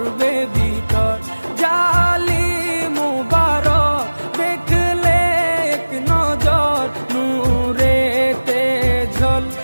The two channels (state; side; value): inverted; both; correlation -1.00